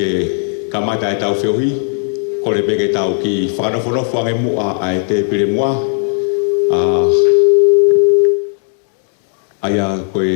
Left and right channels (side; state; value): right; silent; 70 dB below the other